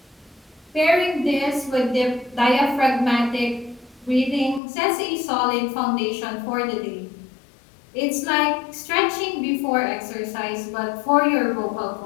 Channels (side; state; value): right; drops out; at 4.6 s